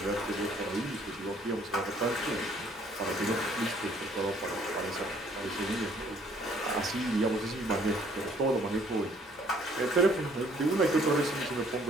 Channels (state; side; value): normal; both; correlation 0.61